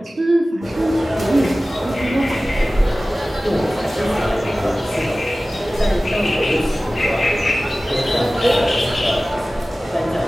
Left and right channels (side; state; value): both; normal; correlation 0.97